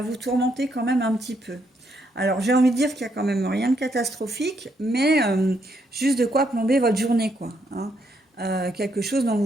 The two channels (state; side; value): normal; both; correlation 0.75